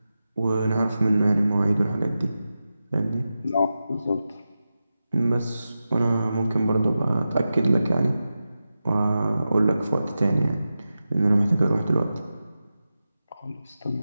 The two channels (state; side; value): inverted; both; correlation -0.92